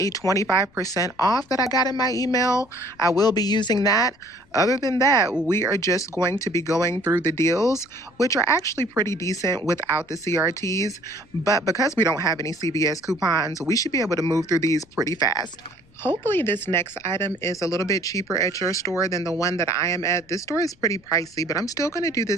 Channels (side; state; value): left; noise; rumble, 30 dB below the sound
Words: 25% off that I got in my email. I will be using that. Other than that, we are just going to be going through the deals, which are actually pretty decent without the CRTs. But because we don't have any CVS coupons, we should be able to move through these pretty fast. Hopefully this next item is a little bit cheaper at your store than the one that I am at. This store is pretty pricey, but I'm still going to do